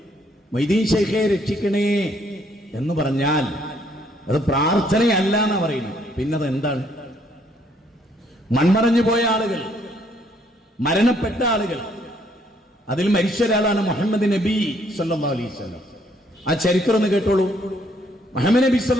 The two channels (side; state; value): both; normal; correlation 0.68